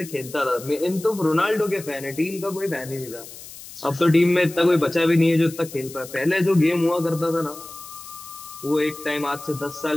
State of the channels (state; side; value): noise; left; hiss, 15 dB below the sound